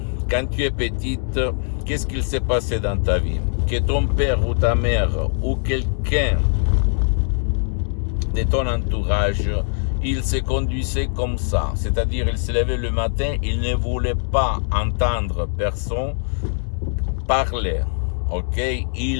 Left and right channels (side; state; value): right; silent; 65 dB below the other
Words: quand tu es petite, qu'est-ce qu'il s'est passé dans ta vie? Que ton père ou ta mère ou quelqu'un de ton entourage, il se conduisait comme ça. C'est-à-dire, il se levait le matin, il ne voulait pas entendre personne parler. Ok?